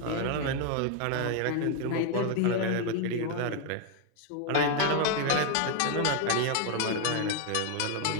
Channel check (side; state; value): both; different; correlation 0.01